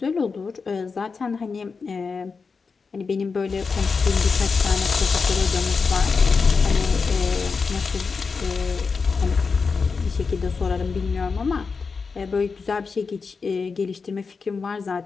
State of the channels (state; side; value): quieter; right; 4.9 dB